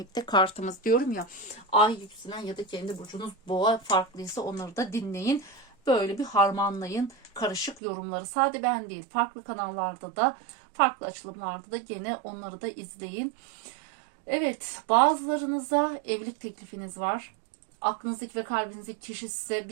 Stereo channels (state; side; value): drops out; left; at 7.8 s